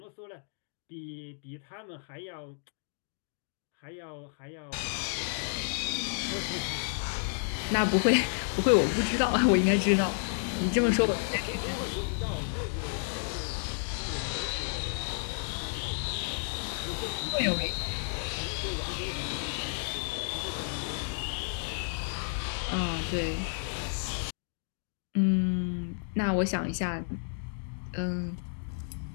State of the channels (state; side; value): silent; right; digital silence